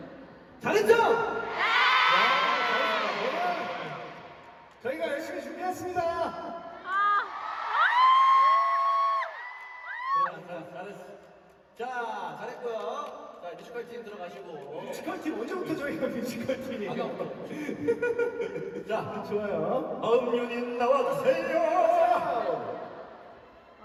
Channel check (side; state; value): both; identical; correlation 1.00